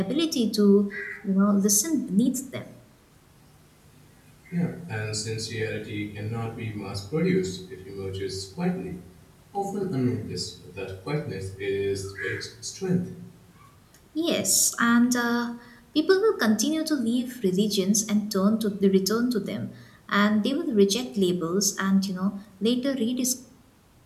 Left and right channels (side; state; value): both; identical; correlation 1.00